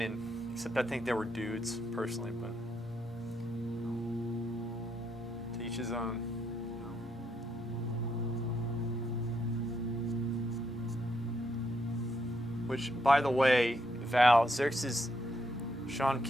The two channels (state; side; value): normal; both; correlation 0.77